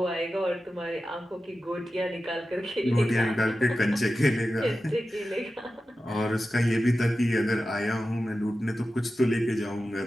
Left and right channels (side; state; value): both; normal; correlation 0.93